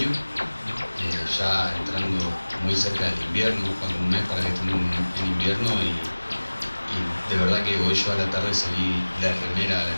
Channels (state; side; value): inverted; both; correlation -1.00